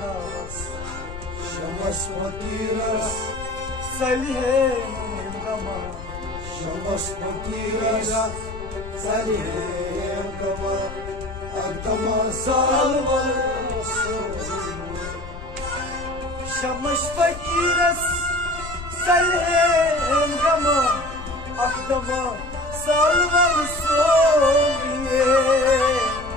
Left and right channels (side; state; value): left; noise; rumble, 12 dB below the sound